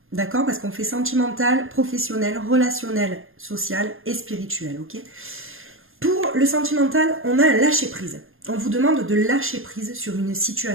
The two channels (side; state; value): left; late; 0.60 ms